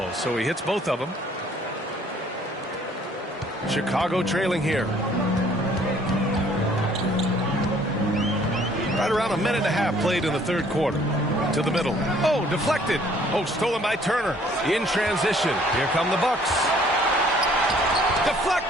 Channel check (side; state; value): both; normal; correlation 0.59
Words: so he hits both of them. Chicago trailing here. Right around a minute and a half played in the third quarter. To the middle. Oh, deflected. Oh, stolen by Turner. In transition. Here come the Bucks.